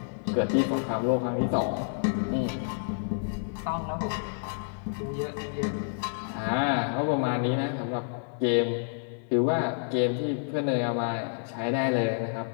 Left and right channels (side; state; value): right; silent; 59 dB below the other